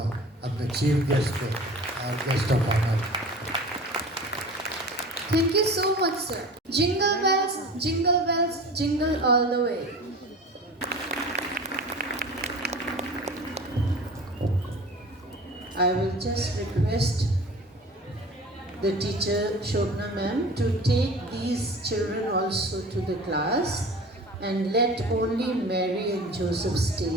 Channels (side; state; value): both; normal; correlation 0.39